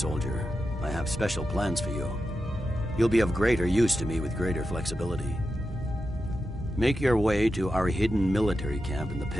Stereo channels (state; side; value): normal; both; correlation 0.90